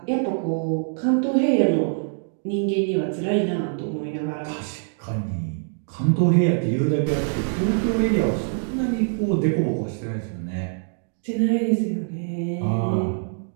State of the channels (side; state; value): left; silent; 63 dB below the other